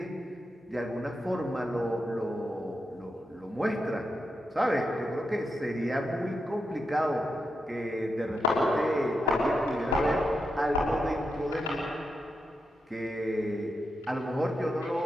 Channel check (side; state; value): both; normal; correlation 0.86